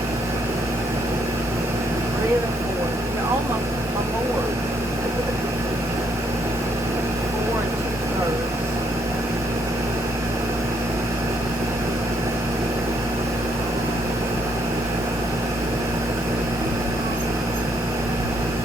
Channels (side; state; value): both; normal; correlation 0.71